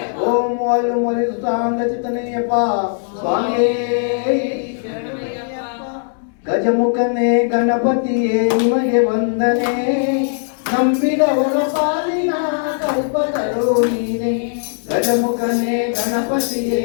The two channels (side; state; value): right; silent; digital silence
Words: ಓಂ ವಾಯು ಮರಿಸುತ್ತಾಂಗ ಚಿತ್ತನೆಯಪ್ಪ ಸ್ವಾಮಿಯೇ ಗಜಮುಖನೇ ಗಣಪತಿಯೇ ನಿಮಗೆ ವಂದನೆ ನಂಬಿದವರ ಪಾಲಿನ ಕಲ್ಪತರು ನೀನೆ ಗಜಮುಖನೇ ಗಣಪತಿಯೇ